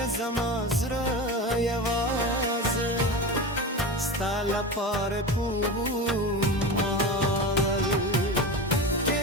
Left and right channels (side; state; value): both; normal; correlation 0.26